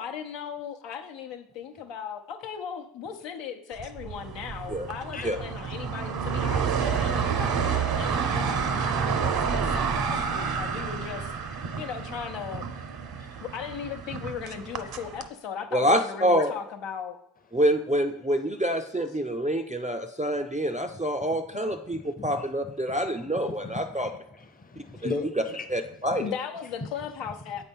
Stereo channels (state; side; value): normal; both; correlation 0.40